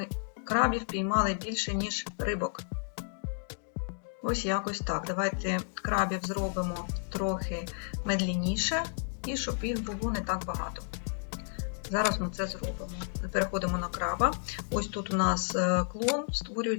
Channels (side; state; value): right; silent; 56 dB below the other